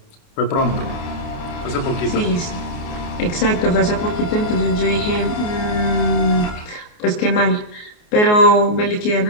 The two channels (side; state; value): right; late; 29 ms